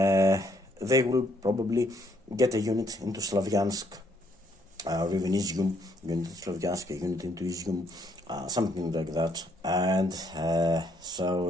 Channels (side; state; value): both; normal; correlation 0.70